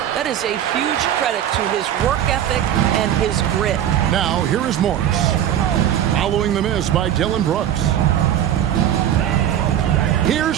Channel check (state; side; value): quieter; left; 10.7 dB